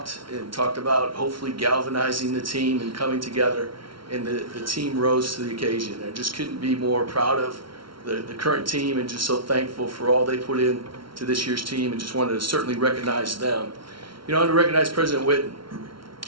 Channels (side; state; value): left; late; 0.74 ms